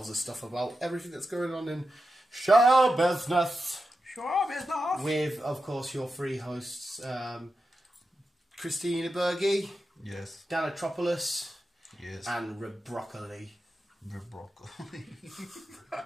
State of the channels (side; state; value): both; normal; correlation 0.90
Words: us stuff about everything that's going on in show business. Show business. With, of course, your three hosts, Christina Berge, yes, Dan Atropoulos, yes, and Rebroccoli. Rebroccoli.